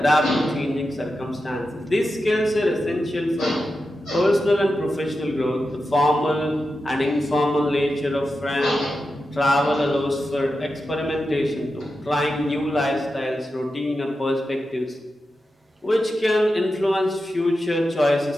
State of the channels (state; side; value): normal; both; correlation 0.90